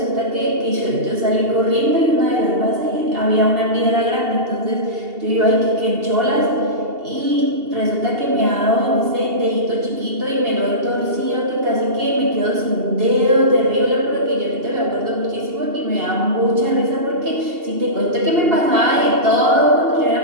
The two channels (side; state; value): left; late; 2.7 ms